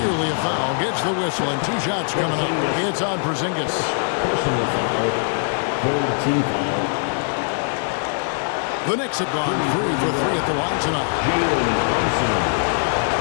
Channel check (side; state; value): right; silent; digital silence